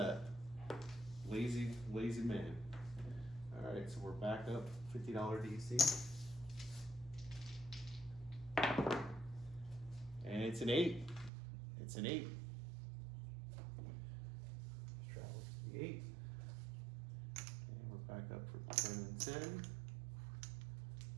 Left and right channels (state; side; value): drops out; left; at 11.3 s